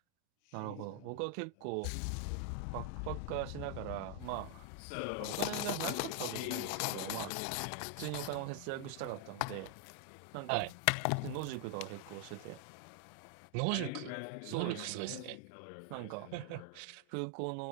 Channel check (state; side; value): different; both; correlation 0.00